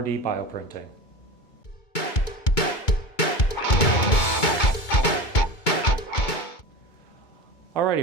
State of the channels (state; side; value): late; right; 2.2 ms